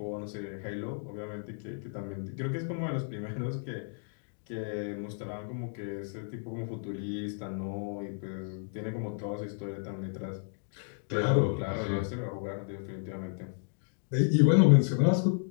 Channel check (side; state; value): right; silent; digital silence